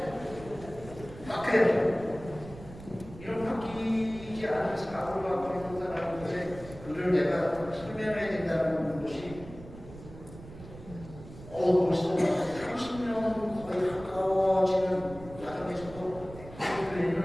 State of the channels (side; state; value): right; noise; rumble, 16 dB below the sound